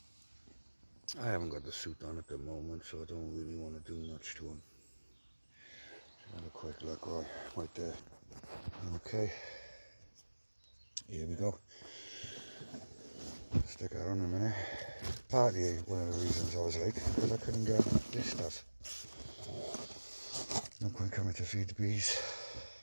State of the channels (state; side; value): inverted; both; correlation -1.00